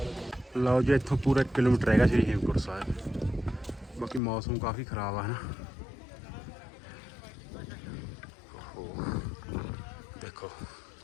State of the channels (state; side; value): drops out; right; at 4.2 s